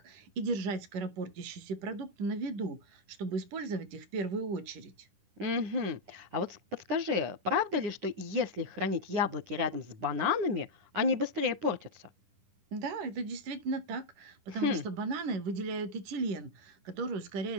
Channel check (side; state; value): left; late; 10 ms